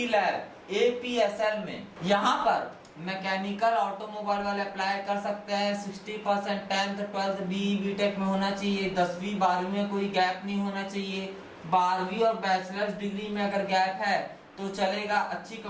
लैब एपीएसएल में। यहाँ पर मैकेनिकल ऑटोमोबाइल वाले अप्लाई कर सकते हैं। 60% 10th 12th बीई बीटेक में होना चाहिए, 10वीं 12वीं में कोई गैप नहीं होना चाहिए। 12वीं और बैचलर्स डिग्री में अगर गैप है तो चलेगा। अच्छी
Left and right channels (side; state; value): both; identical; correlation 1.00